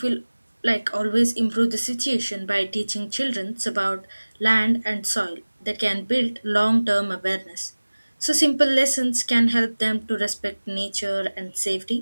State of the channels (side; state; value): both; inverted; correlation -1.00